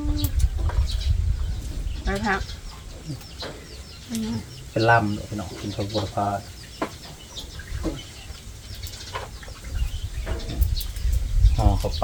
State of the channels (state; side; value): identical; both; correlation 1.00